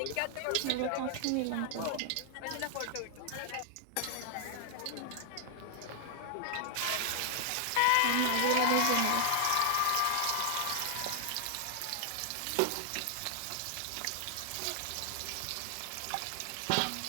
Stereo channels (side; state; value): both; different; correlation 0.00